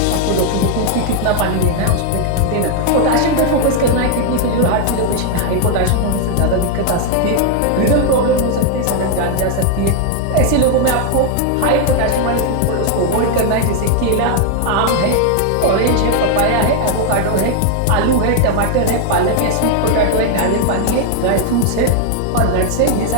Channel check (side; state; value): both; different; correlation 0.00